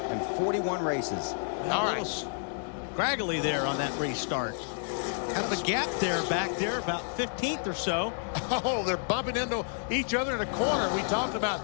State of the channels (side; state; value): right; silent; 58 dB below the other